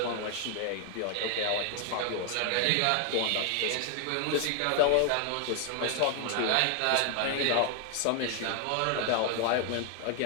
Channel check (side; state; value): both; different; correlation 0.00